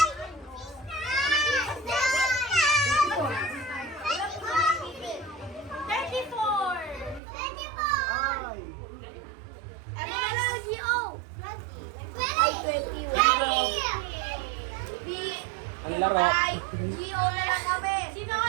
34. Ang laro. Gio na lang kami. Sino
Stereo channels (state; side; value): drops out; left; at 7.2 s